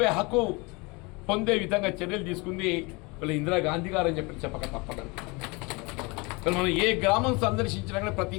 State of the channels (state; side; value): quieter; right; 27.3 dB